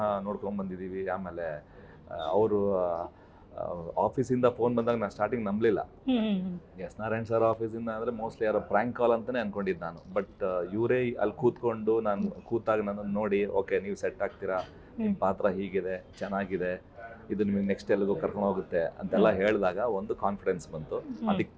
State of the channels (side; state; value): both; identical; correlation 1.00